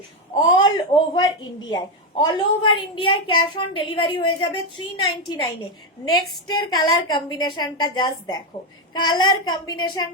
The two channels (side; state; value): both; normal; correlation 0.08